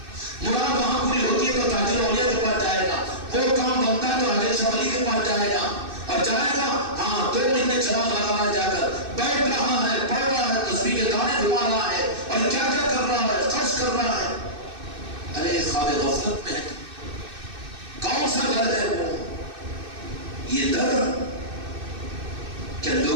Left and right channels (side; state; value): left; late; 2.6 ms